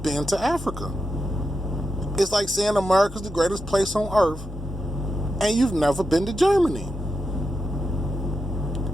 to Africa. It's like saying America's the greatest place on earth and you've never been to Germany.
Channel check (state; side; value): normal; both; correlation 0.88